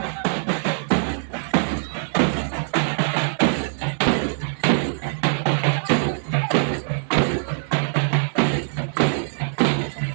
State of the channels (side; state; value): left; silent; 60 dB below the other